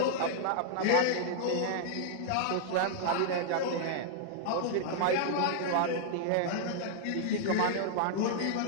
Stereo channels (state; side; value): different; both; correlation -0.01